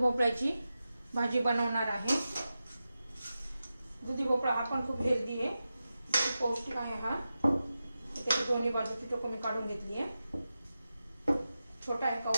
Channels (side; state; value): both; inverted; correlation -0.92